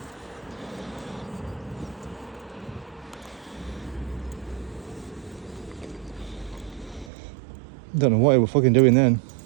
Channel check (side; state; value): left; drops out; at 7.1 s